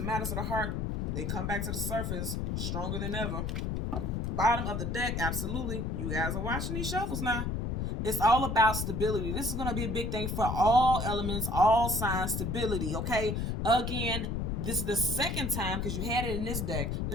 of the heart, they come back to the surface stronger than ever. Bottom of the deck, absolutely. You guys are watching these shuffles now. It's all about stability. This is going to be a big thing for all elements, all signs, stability, okay? Again, this is the second time, because you had it in this deck.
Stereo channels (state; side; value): noise; left; rumble, 1 dB below the sound